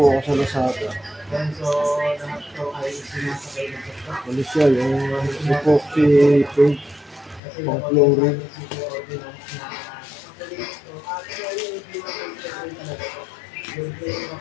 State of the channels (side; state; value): right; drops out; at 7.4 s